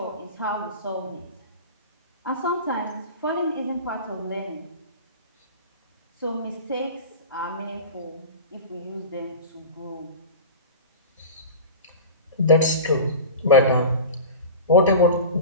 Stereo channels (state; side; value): inverted; both; correlation -0.31